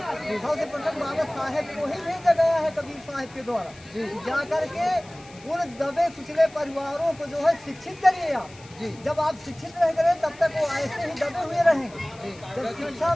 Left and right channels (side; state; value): left; noise; hiss, 23 dB below the sound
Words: सबसे प्रथम बाबा साहेब को ही भेजा गया है कबीर साहब के द्वारा, जा करके उन दबे कुचले परिवारों को जो है शिक्षित करिए आप। जब आप शिक्षित रहेंगे तब तक वो ऐसे ही दबे हुए रहेंगे। जब शिक्षा